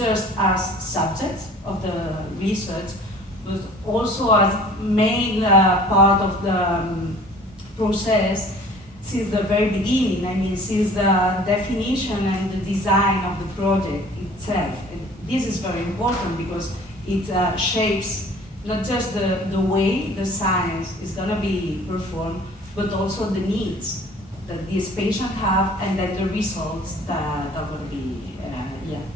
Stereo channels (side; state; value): both; normal; correlation 0.49